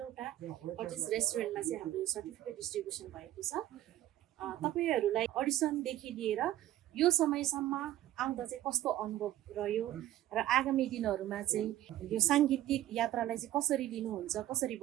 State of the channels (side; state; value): left; quieter; 13.5 dB